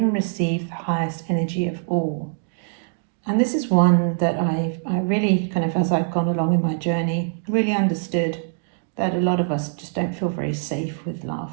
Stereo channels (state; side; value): silent; left; digital silence